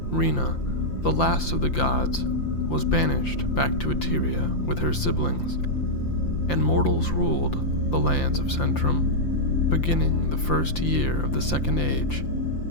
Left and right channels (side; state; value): right; late; 5.8 ms